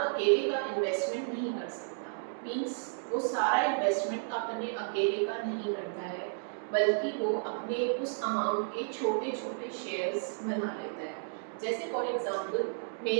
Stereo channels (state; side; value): silent; left; digital silence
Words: का इन्वेस्टमेंट नहीं कर सकता। मीन्स वो सारा इन्वेस्टमेंट अपने अकेले का नहीं करता है, बल्कि वो अपने उस अमाउंट के छोटे छोटे शेयर्स बना लेता है। जैसे फॉर एग्जांपल